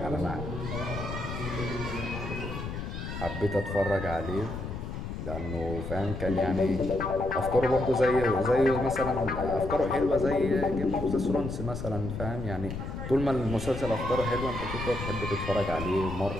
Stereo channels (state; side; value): noise; left; rumble, 6 dB below the sound